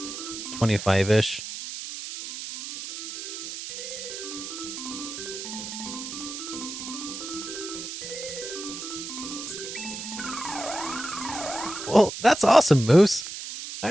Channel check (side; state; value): right; noise; hiss, 8 dB below the sound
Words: 25-ish. That's awesome, Moose. I